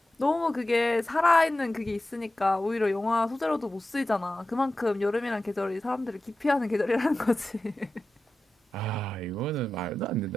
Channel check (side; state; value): both; normal; correlation 0.93